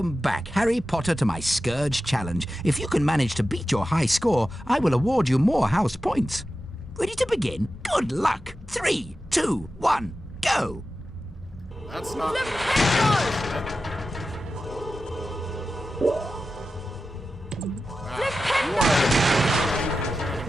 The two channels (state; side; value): normal; both; correlation 0.93